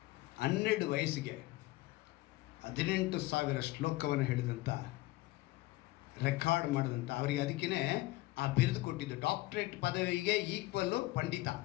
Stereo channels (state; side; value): quieter; right; 19.3 dB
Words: 12 ವಯಸ್ಸಿಗೆ 18,000 ಶ್ಲೋಕವನ್ನು ಹೇಳಿದಂಥ, ರೆಕಾರ್ಡ್ ಮಾಡಿದಂಥ, ಅವರಿಗೆ ಅದಕ್ಕೇ ಆ ಬಿರುದು ಕೊಟ್ಟಿದ್ದು. ಡಾಕ್ಟ್ರೇಟ್ ಪದವಿಗೆ ಈಕ್ವಲ್ಲು ಪಂಡಿತ.